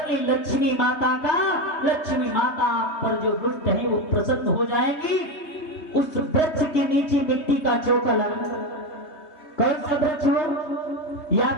ले लक्ष्मी माता का। लक्ष्मी माता आप पर जो दुष्ट है वो प्रसन्न हो जाएंगी। उस वृक्ष के नीचे मिट्टी का चौका लगा, कौन सा वृक्ष हो, या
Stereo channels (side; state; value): right; late; 3.2 ms